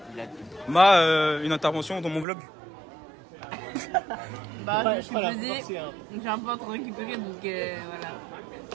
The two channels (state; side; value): drops out; left; at 2.2 s